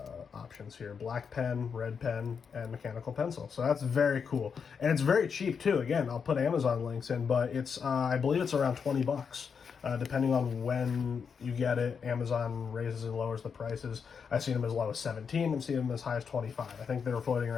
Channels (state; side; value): quieter; right; 6.3 dB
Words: options here: black pen, red pen, and mechanical pencil. So that's very cool, and it's very cheap too. Again, I'll put Amazon links in, but it's I believe it's around $20 Depending on when you get it, Amazon raises and lowers the prices. I've seen them as low as $17. I've seen them as high as $25. I think they're floating